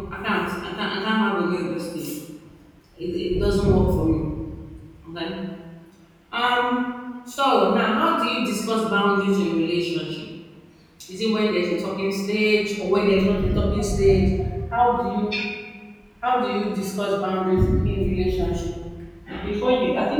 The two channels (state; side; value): identical; both; correlation 1.00